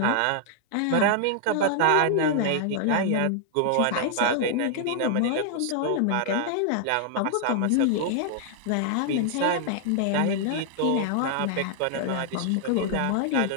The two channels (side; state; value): both; different; correlation 0.00